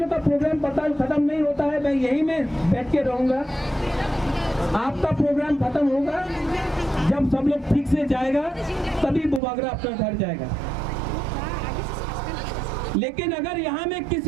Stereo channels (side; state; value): left; drops out; at 9.4 s